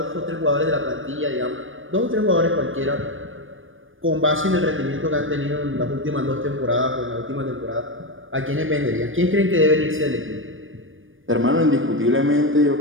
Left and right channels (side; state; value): left; late; 0.58 ms